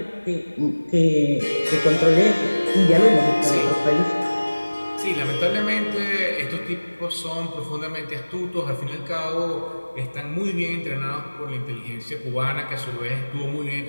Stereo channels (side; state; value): both; inverted; correlation -1.00